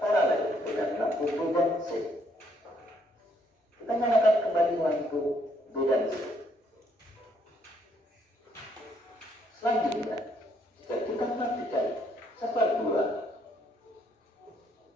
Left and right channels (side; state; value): both; normal; correlation 0.70